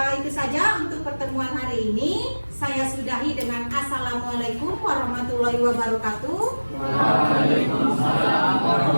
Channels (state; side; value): inverted; both; correlation -1.00